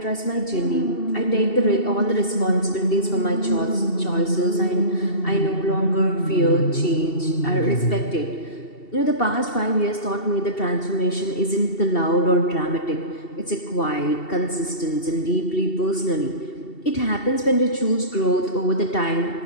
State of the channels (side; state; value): right; late; 2.7 ms